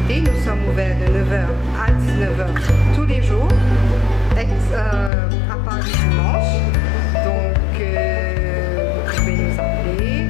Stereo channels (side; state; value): right; drops out; at 5.1 s